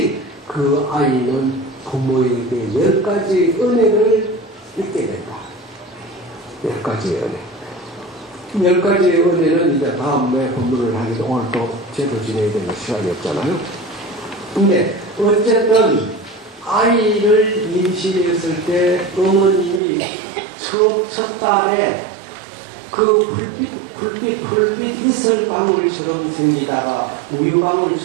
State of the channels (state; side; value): drops out; left; at 19.8 s